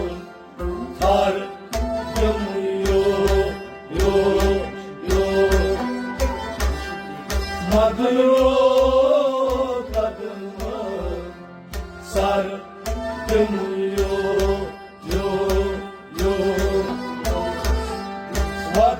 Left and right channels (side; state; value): both; identical; correlation 1.00